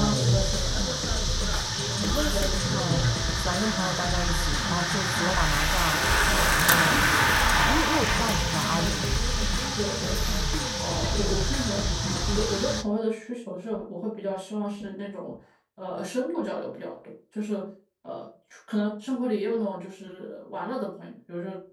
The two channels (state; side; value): identical; both; correlation 1.00